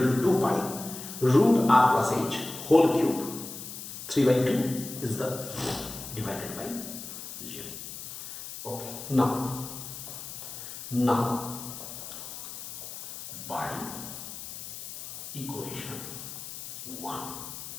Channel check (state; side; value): noise; left; hiss, 10 dB below the sound